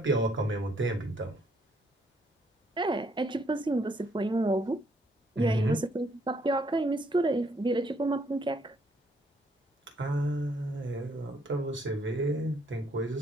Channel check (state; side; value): normal; both; correlation 0.69